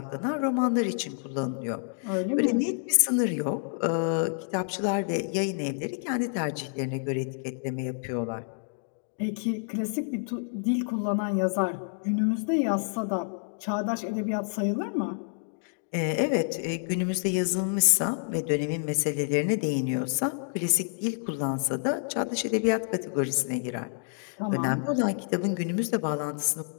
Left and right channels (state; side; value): silent; right; digital silence